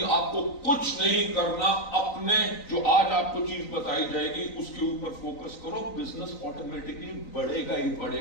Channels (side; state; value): right; late; 3.9 ms